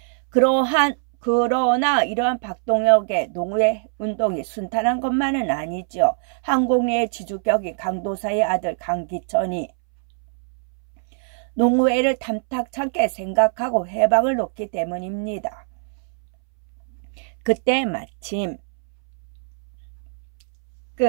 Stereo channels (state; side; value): silent; left; 64 dB below the other